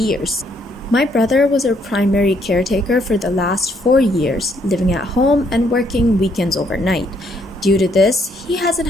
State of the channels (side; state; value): both; normal; correlation 0.70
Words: My brother was our primary caretaker for the last 4 years, living at home and working weekends overnight. Due to this, he hasn't